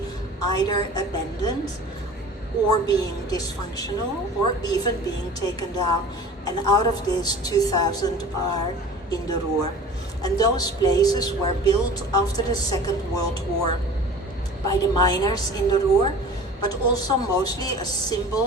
either abandoned or being dysfunctional or even being taken down. And out of this, 2,000 are in the Ruhr. And those places were built after the Second World War by the miners in the Ruhr, but also mostly as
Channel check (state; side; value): normal; both; correlation 0.41